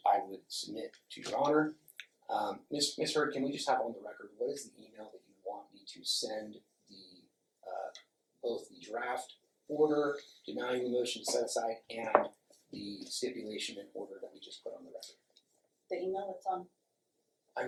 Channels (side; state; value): both; identical; correlation 1.00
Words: I would submit to your honor. Ms. Heard, can we just have on the record, what is the email that you want me to send the, both the draft order denying the motion to set aside and the stipulation and order that we just put on the record? The email that's on I